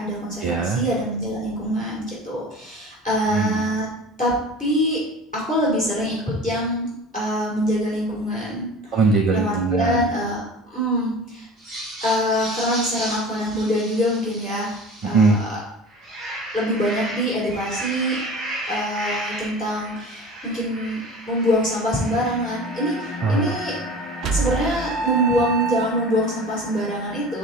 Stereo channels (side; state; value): both; normal; correlation 0.39